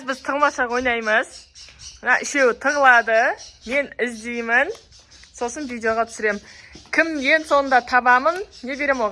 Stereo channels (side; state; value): both; identical; correlation 1.00